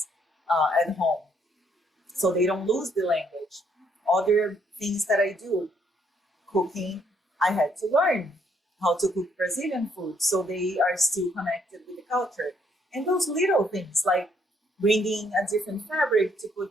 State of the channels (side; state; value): both; normal; correlation 0.69